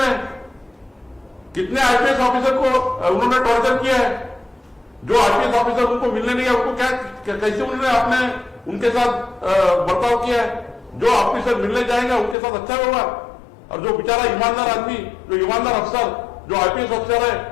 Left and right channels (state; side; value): drops out; right; at 12.4 s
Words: है? कितने आईपीएस ऑफिसर को उन्होंने टॉर्चर किया है? जो आईपीएस ऑफिसर उनको मिलने नहीं है, उनको कैसे उन्होंने आपने उनके साथ बर्ताव किया है? जो ऑफिसर मिलने जाएंगे उनके साथ अच्छा व्यवहार, और जो बेचारा ईमानदार आदमी, जो ईमानदार अफसर, जो आईपीएस अफसर है,